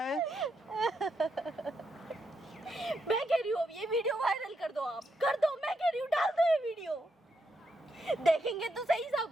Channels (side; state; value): both; normal; correlation 0.80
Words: मैं कह रही हूँ ये वीडियो वायरल कर दो, आप कर दो, मैं कह रही हूँ डाल दो ये वीडियो, देखेंगे तो सही